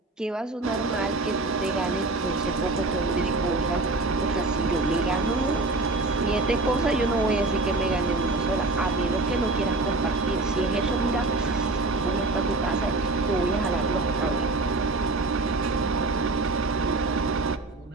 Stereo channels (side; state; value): left; quieter; 3.2 dB